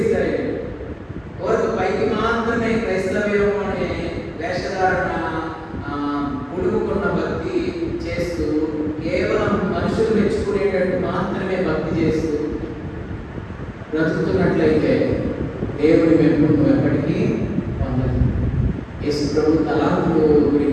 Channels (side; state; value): both; identical; correlation 1.00